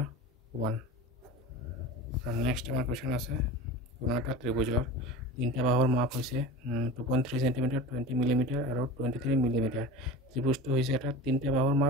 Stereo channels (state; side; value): normal; both; correlation 0.33